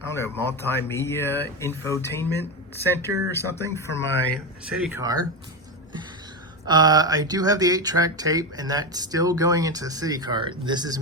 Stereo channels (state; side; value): normal; both; correlation 0.15